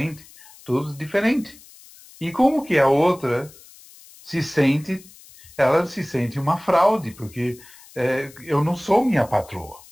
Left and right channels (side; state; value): left; noise; hiss, 22 dB below the sound